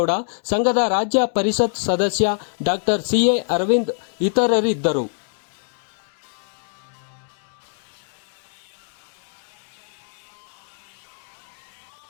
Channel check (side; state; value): right; silent; digital silence